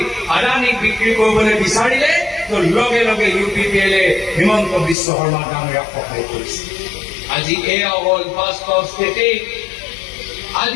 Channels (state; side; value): drops out; right; at 5.0 s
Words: আদানীক বিক্ৰী কৰিবলৈ বিচাৰিলে, তো লগে লগে UPPL হিমন্ত বিশ্ব শৰ্মা ডাঙৰীয়াক সহায় কৰিছে। আজি এয়া হ'ল বাস্তৱ স্থিতি।